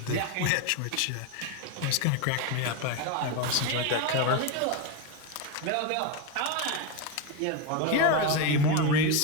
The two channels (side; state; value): both; different; correlation 0.03